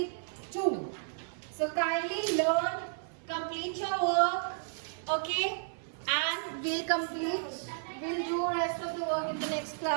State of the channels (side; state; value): left; silent; 56 dB below the other